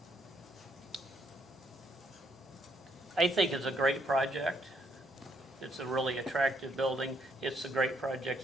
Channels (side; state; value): both; normal; correlation 0.72